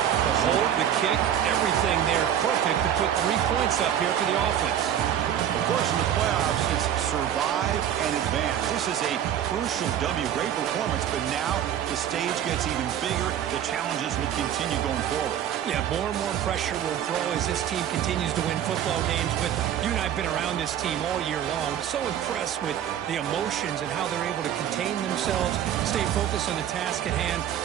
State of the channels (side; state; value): left; quieter; 10.1 dB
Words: hold, the kick, everything there perfect to put 3 points up here for the offense. Of course, in the playoffs, it's survive and advance. This is a crucial W. Great performance, but now the stage gets even bigger. The challenges will continue going forward. Yeah, more and more pressure will grow as this team continues to win football games. But you and I have been around this team all year long. So impressed with the emotions and how they're able to contain themselves, stay focused on the task at hand.